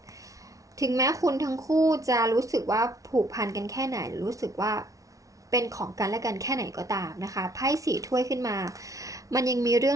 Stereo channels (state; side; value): late; left; 0.17 ms